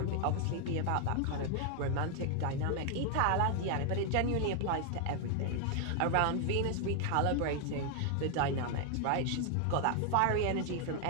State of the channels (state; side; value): different; both; correlation 0.00